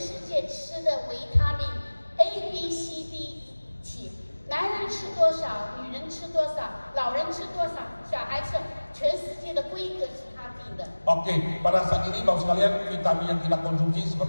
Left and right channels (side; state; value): both; inverted; correlation -1.00